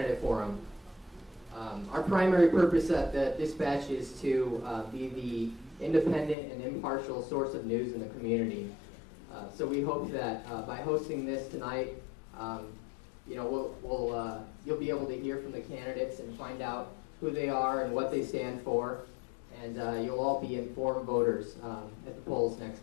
Forum. Our primary purpose at the Dispatch is to be the independent and impartial source of news in the community. So we hope that by hosting this tonight, you'll be able to hear from the candidates and find out who they are and what they stand for, and you'll all be informed voters at the polls next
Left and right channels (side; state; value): right; drops out; at 6.4 s